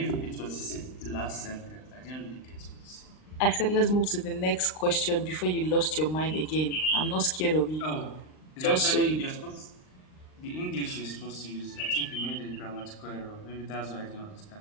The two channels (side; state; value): right; late; 39 ms